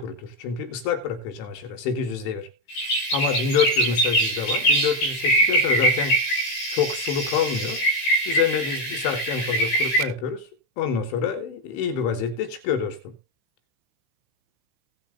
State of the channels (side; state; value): right; late; 15 ms